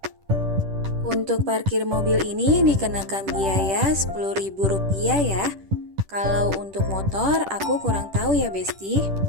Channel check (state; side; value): late; left; 10 ms